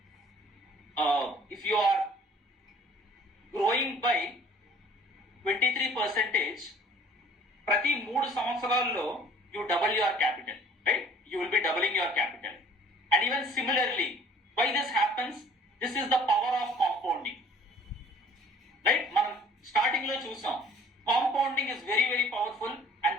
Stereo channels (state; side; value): normal; both; correlation 0.53